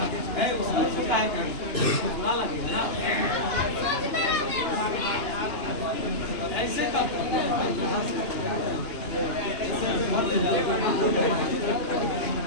है उसका छोटा है बुरा लगेगा ना, ऐसे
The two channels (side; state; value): right; late; 2.9 ms